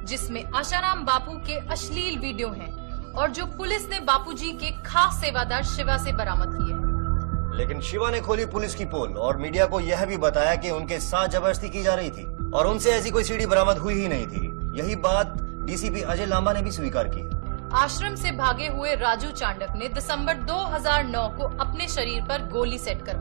जिसमें आशाराम बापू के अश्लील वीडियो हैं और जो पुलिस ने बापूजी के खास सेवादार शिवा से बरामद किए। लेकिन शिवा ने खोली पुलिस की पोल और मीडिया को यह भी बताया कि उनके साथ जबरदस्ती की जा रही थी और उनसे ऐसी कोई CD बरामद हुई ही नहीं थी। यही बात DCP अजय लांबा ने भी स्वीकार की। आश्रम से भागे हुए राजू चांडक ने दिसंबर 2009 को अपने शरीर पर गोली सेट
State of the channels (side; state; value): left; silent; digital silence